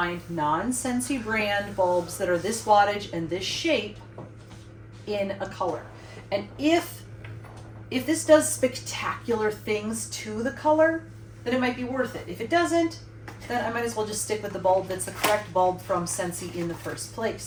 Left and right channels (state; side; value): identical; both; correlation 1.00